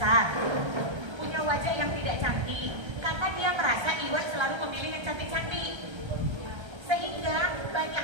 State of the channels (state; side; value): late; left; 1.3 ms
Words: punya wajah yang tidak cantik, karena dia merasa ikhwan selalu memilih yang cantik-cantik. Sehingga banyak